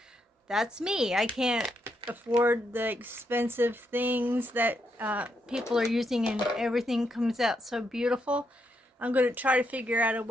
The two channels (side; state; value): both; normal; correlation 0.79